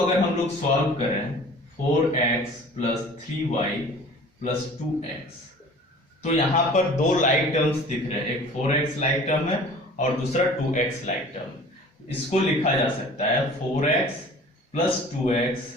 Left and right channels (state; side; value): normal; both; correlation 0.45